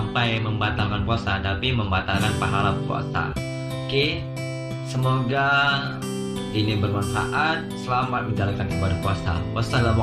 membatalkan puasa, tapi membatalkan pahala puasa. Oke, semoga ini bermanfaat. Selamat menjalankan ibadah puasa.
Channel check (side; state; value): both; identical; correlation 1.00